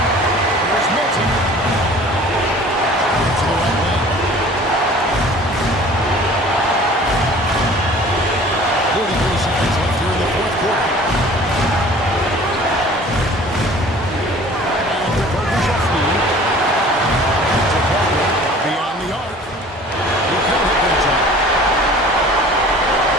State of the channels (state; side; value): normal; both; correlation 0.47